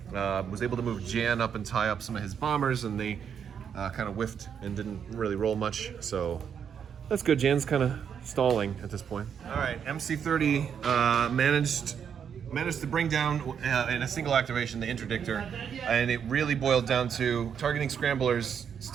Was able to move Jan up and tie up some of his bombers, and they kind of whiffed and didn't really roll much. So that's good. Jan's kind of stalling at this point. All right, MC30 managed to bring down in a single activation the Interdictor, and it really boiled down to targeting scramblers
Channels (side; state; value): left; quieter; 7.7 dB